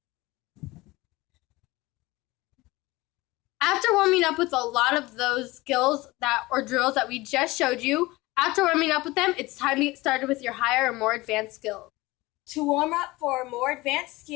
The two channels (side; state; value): right; quieter; 20.6 dB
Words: After warming up with a lot of those skills or drills that we just showed you, after warming up with them, it's time to get started with your higher or more advanced skills. To warm up for more advanced